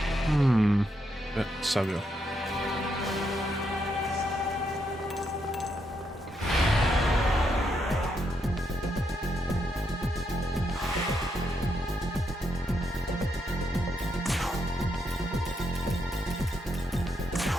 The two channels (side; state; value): both; normal; correlation 0.79